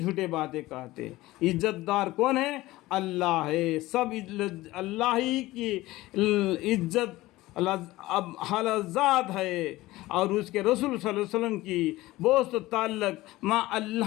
باتیں کہتے ہیں۔ عزت دار کون ہے؟ اللہ ہے، سب اللہ ہی کی عزت اب حالت ذات ہے اور اس کے رسول صلی اللہ علیہ وسلم کی دوست و تعلق مع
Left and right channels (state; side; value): quieter; right; 18.2 dB